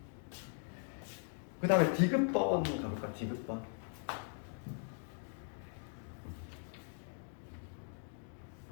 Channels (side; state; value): right; silent; 51 dB below the other